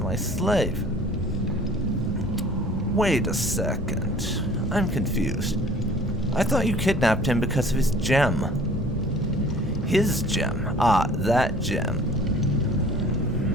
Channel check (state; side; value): normal; both; correlation 0.49